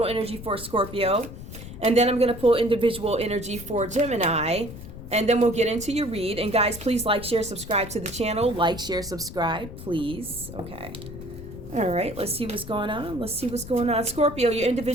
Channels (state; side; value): noise; left; rumble, 12 dB below the sound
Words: energy for Scorpio, and then I'm going to pull individual energy for Gemini. And then we'll get into your read. And guys, please like, share, subscribe to the channel. Like, share, subscribe, please. Okay. All right. Let's see what's going on. Let's see what's going on. Scorpio, your